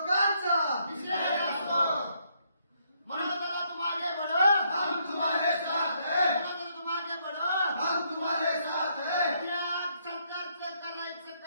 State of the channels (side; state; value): both; inverted; correlation -0.72